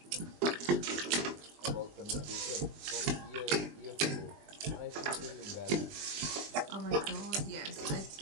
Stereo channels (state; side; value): late; left; 20 ms